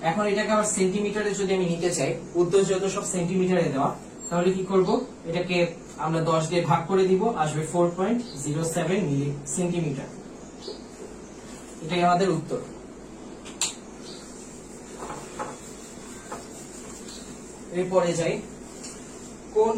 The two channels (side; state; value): both; identical; correlation 1.00